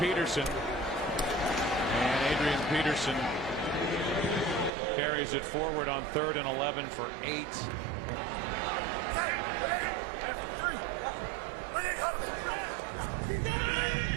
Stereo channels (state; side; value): drops out; left; at 4.7 s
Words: And Adrian Peterson carries it forward on 3rd and 11 for 8.